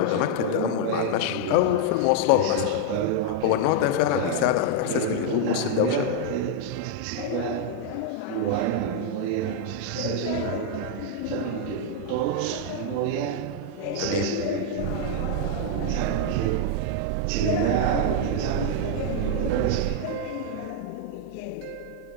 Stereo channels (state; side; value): different; both; correlation -0.01